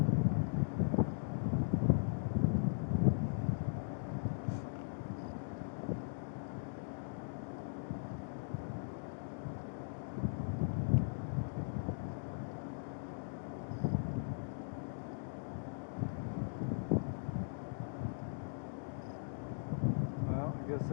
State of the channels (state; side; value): silent; right; digital silence